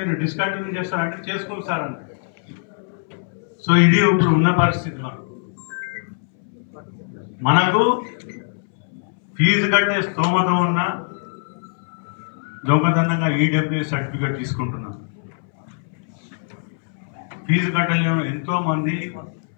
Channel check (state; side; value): silent; right; 63 dB below the other